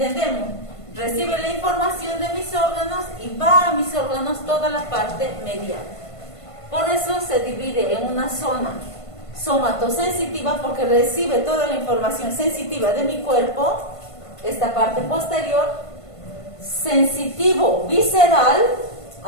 Recibe la información de mis órganos y va a mis órganos toda la parte medial. Por eso se divide en una zona somatosensitiva, porque recibe toda la información sensitiva de mi cuerpo, esta parte posterior, sensitivo visceral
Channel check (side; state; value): right; late; 1.5 ms